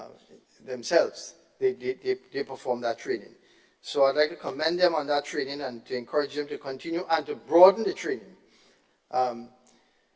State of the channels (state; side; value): identical; both; correlation 1.00